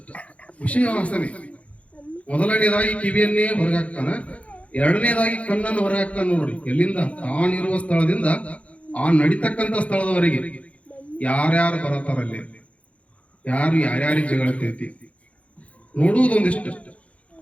ವಿಷಯ ವಾಸನೆ. ಮೊದಲನೇದಾಗಿ ಕಿವಿಯನ್ನೇ ಹೊರಗೆ ಹಾಕ್ತಾನ, ಎರಡನೇದಾಗಿ ಕಣ್ಣನ್ನು ಹೊರಗೆ ಹಾಕ್ತಾನ. ನೋಡ್ರಿ, ಎಲ್ಲಿಂದ ತಾನಿರುವ ಸ್ಥಳದಿಂದ ಆ ನಡಿತಕ್ಕಂತ ಸ್ಥಳದವರೆಗೆ ಯಾರ್ಯಾರು ಬರತಾರಲ್ಲಿ, ಯಾರು ಯಾರ್ಯಾರಿಗೆ ಜಗಳತೈತಿ ನೋಡುವುದೊಂದಿಷ್ಟು,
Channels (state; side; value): late; right; 0.064 ms